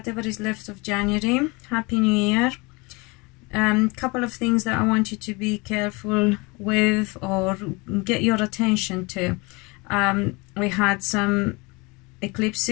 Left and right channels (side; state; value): right; quieter; 26.7 dB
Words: is left of January. Happy New Year. Couple of things that I want you to be careful with or get your attention to. We had some